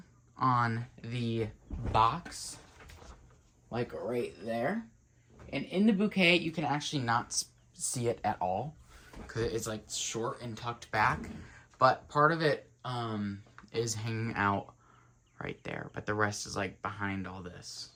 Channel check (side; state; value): both; identical; correlation 1.00